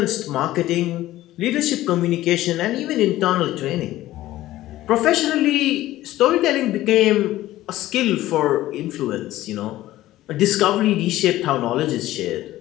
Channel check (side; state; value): right; quieter; 15.4 dB